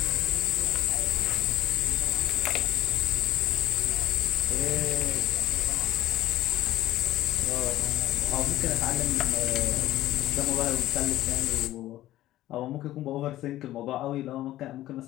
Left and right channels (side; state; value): right; quieter; 14.6 dB